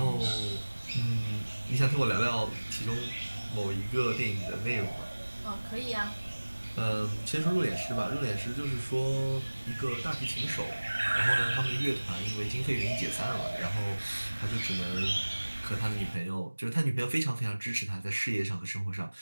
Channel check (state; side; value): inverted; both; correlation -1.00